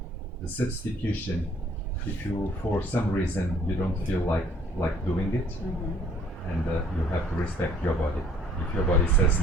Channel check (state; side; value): normal; both; correlation 0.59